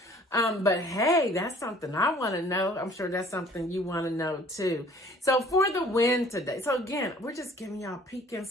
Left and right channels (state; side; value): normal; both; correlation 0.53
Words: But hey, that's something I want to know. I'm sure that's something you want to know too. So for the win today. So again, we're just giving y'all a peek